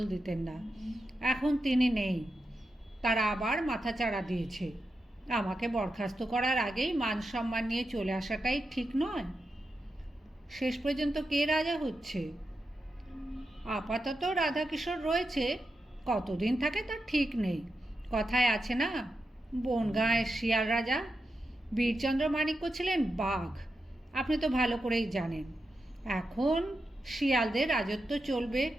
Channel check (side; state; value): both; normal; correlation 0.88